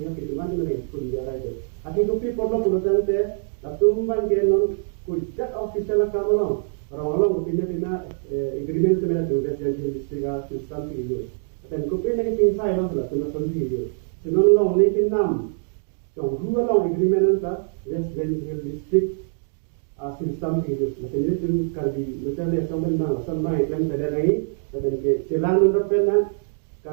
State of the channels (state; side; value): silent; left; digital silence